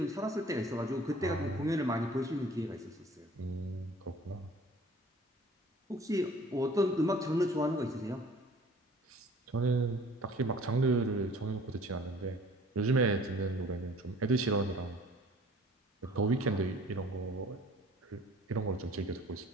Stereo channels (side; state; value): both; normal; correlation 0.50